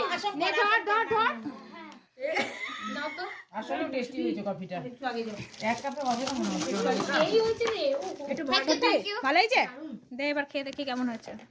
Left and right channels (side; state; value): both; identical; correlation 1.00